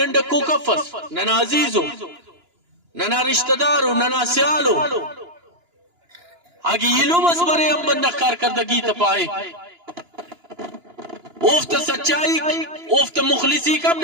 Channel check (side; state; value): left; late; 2.9 ms